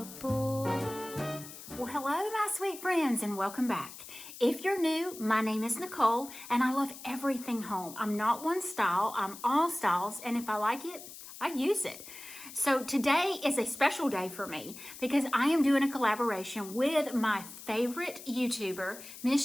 bore. Well, hello, my sweet friends, and welcome back. If you're new, my name is Nicole, and I love everything home. I'm not one style, I'm all styles, and if I like it, I use it. So today is a special day for me because I am doing a collaboration with my favorite YouTuber,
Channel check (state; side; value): noise; left; hiss, 14 dB below the sound